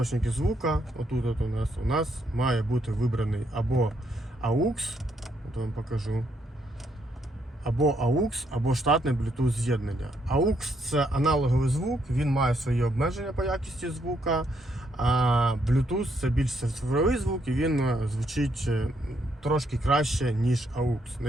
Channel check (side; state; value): both; normal; correlation 0.74